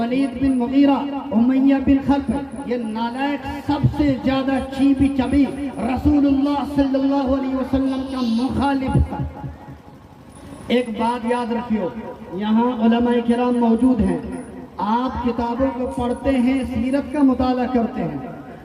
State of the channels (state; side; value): identical; both; correlation 1.00